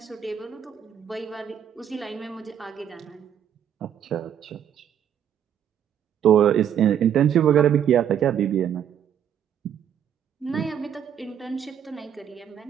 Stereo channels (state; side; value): quieter; left; 9.2 dB